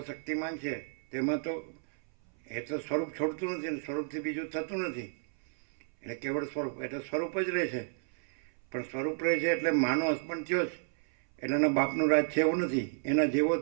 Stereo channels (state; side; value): silent; left; 57 dB below the other